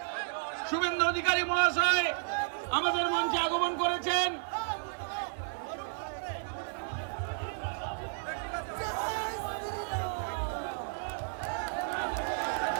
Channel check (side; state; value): left; silent; digital silence